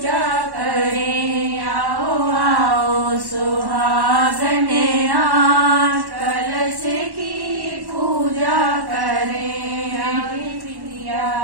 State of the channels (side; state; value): left; late; 1.1 ms